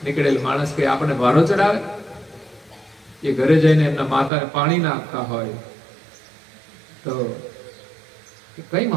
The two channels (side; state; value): left; drops out; at 4.3 s